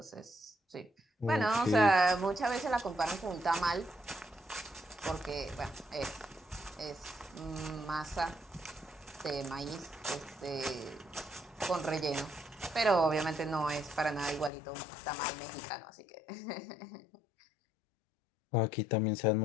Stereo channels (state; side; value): drops out; right; at 14.5 s